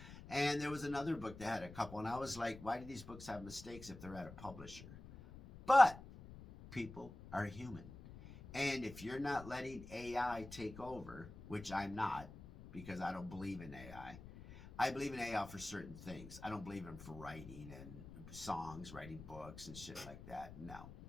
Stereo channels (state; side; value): noise; left; rumble, 14 dB below the sound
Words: And there was another book that had a couple, and I was like, why do these books have mistakes if they're at a publisher? But people are human. And if you're not letting AI take over, which I'm not, because I don't believe in AI, I believe in AI for certain things. I don't believe in for writing and songs, writing books and shit like that. No.